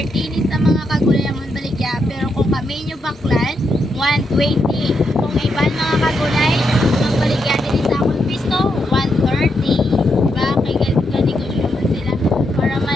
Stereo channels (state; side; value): normal; both; correlation 0.81